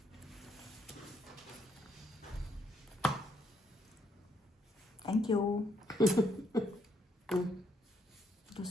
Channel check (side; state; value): both; normal; correlation 0.72